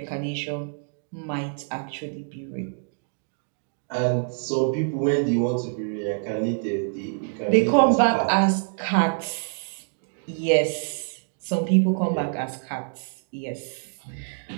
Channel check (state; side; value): silent; left; digital silence